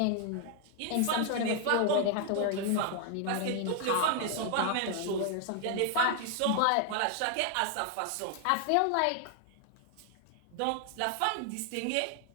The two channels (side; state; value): both; different; correlation 0.00